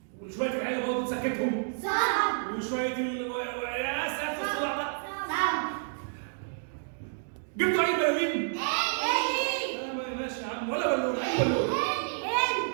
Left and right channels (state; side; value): silent; left; digital silence